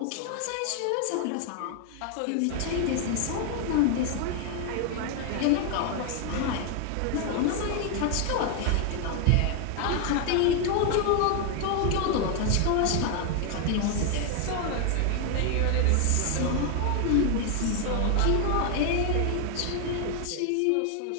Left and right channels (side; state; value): both; different; correlation 0.00